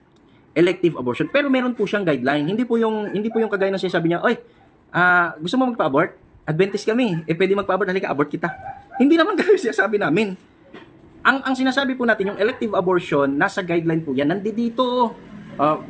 Elective abortion. Pero meron po siyang guideline. Hindi po yung kagaya ng sinasabi niya, "Oy, gusto mo magpa-abort? Adventist kami. Pwede magpa-abort, halika, abort kita." Hindi naman ganun sinasabi namin. Ang sinasabi po natin, yung elective abortion, nasa guideline po yan. Nandito.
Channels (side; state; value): both; identical; correlation 1.00